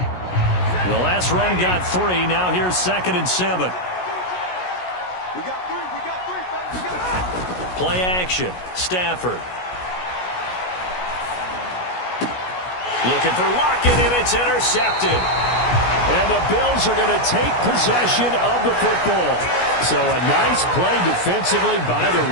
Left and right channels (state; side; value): late; right; 16 ms